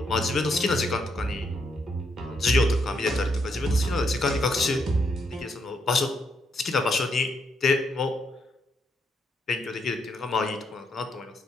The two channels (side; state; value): both; normal; correlation 0.77